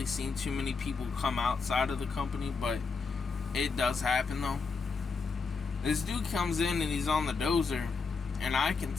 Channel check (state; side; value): quieter; right; 4.8 dB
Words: seen too many people come outside of the company, but it does happen though. This dude comes in and he's on the dozer, and I can